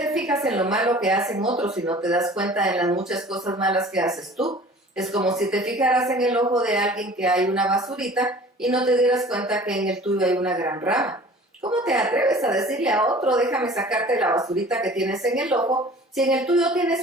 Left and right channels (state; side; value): normal; both; correlation 0.46